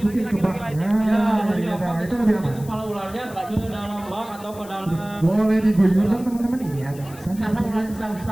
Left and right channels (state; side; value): noise; left; hiss, 20 dB below the sound